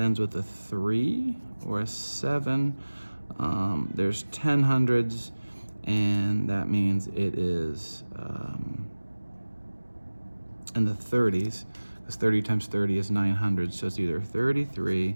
with a 3 or a 7. There's 10 hundreds, and that means it is in the 30s, because 30 times 30 is 900, so it's either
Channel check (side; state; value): both; inverted; correlation -1.00